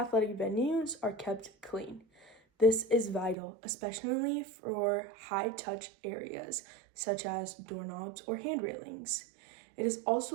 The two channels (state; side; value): drops out; left; at 3.4 s